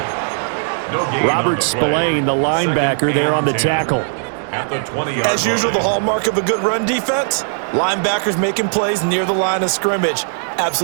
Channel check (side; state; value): left; silent; digital silence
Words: Robert Spillane, the linebacker, there on the tackle. As usual, the hallmark of a good run defense, linebackers making plays near the line of scrimmage.